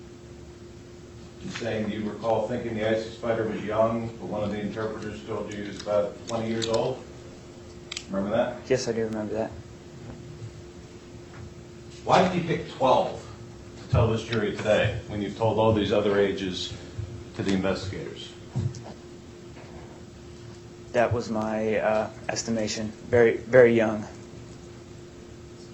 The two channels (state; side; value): identical; both; correlation 1.00